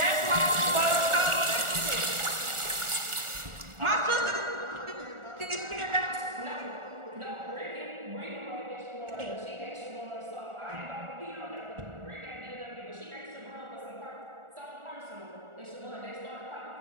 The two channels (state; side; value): late; left; 1.4 ms